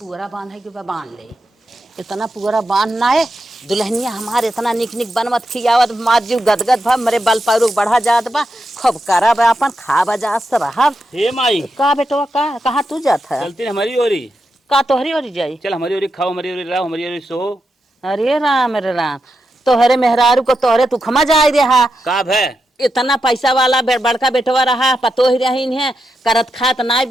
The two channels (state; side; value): normal; both; correlation 0.86